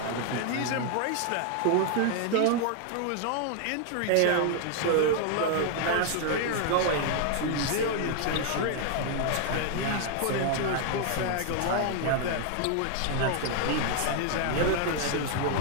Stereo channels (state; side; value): different; both; correlation 0.00